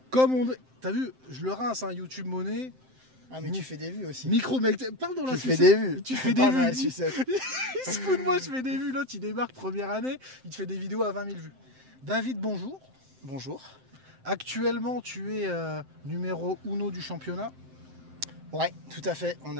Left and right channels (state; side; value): late; left; 7.7 ms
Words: Comme on... T'as vu, je le rince, hein, YouTube monnaie. Ah mais tu fais des vues aussi. Micro mec, parle dans la sucette. Tu fais des vues. Tu fais des vues. Il se fout de moi, je fais des vues. L'autre, il démarque première année, il te fait des vidéos à 20 000 vues. David, bonjour. Bonjour. Actuellement, tu es numéro 1 du championnat. Ouais, tout à fait. On